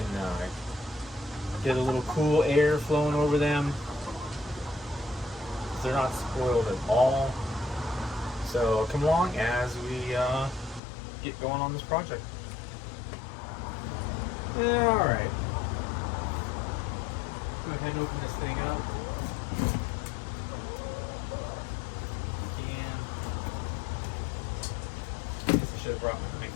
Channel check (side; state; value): right; drops out; at 10.8 s